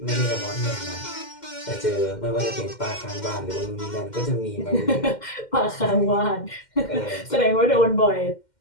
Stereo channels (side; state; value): right; late; 2.1 ms